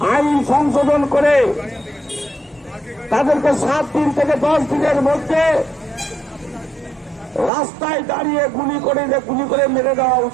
আইন সংশোধন করে তাদেরকে 7 দিন থেকে 10 দিনের মধ্যে রাস্তায় দাঁড়িয়ে গুলি করে মেরে দেওয়া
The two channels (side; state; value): left; drops out; at 7.5 s